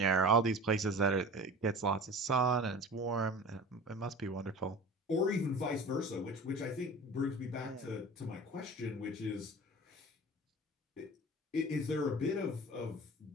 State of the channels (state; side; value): normal; both; correlation 0.37